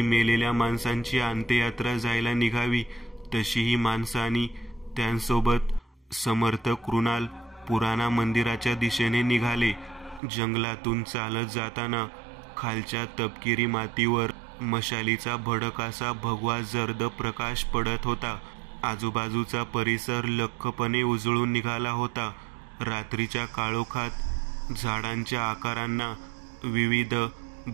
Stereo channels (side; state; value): left; drops out; at 10.2 s